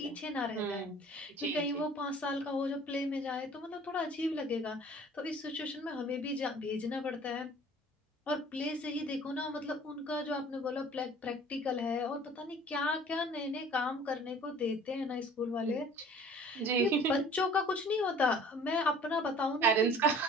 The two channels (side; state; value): both; normal; correlation 0.49